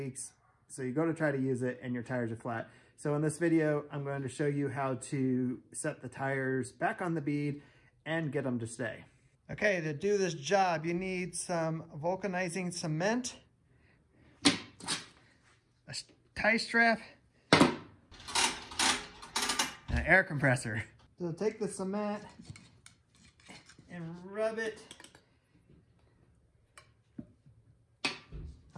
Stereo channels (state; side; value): identical; both; correlation 1.00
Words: So you go to try to use it and your tires are flat. So in this video, I'm going to show you how to set the tires back on the bead and get them to stay. Okay, to do this job, you need some vulcanizing cement, a tie strap, and an air compressor. So take the cement and rub it